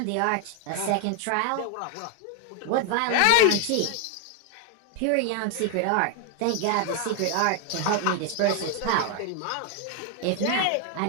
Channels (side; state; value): both; different; correlation 0.00